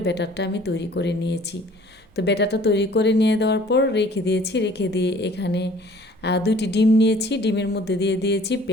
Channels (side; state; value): both; normal; correlation 0.53